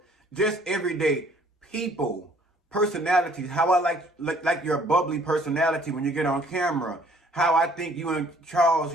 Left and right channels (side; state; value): both; normal; correlation 0.59